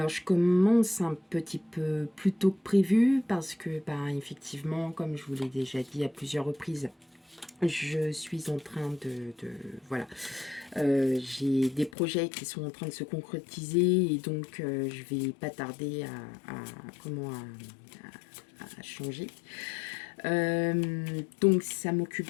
je commence un petit peu plus tôt que prévu parce que, effectivement, comme je vous l'ai déjà dit à plusieurs reprises, je suis en train voilà, j'ai des projets qui sont en train de se concrétiser et donc je vais pas tarder à changer. Donc ça m'occupe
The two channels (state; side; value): drops out; right; at 11.9 s